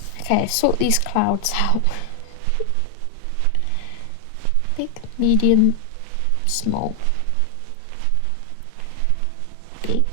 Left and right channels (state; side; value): different; both; correlation 0.00